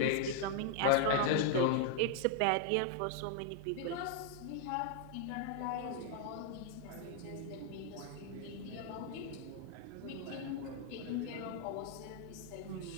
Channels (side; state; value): both; different; correlation 0.00